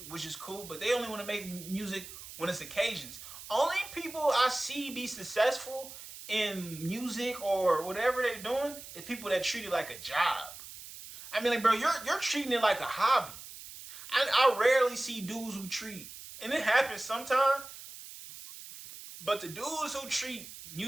which is cool, but they only want to make music when it's occasions. Only people I see be successful in music or whatever they're doing is people that treat it like a job. I mean, like, bro, you're treating it like a hobby. I rarely see dudes who treat, and it happens sometimes. But the dudes who treat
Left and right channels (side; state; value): right; noise; hiss, 14 dB below the sound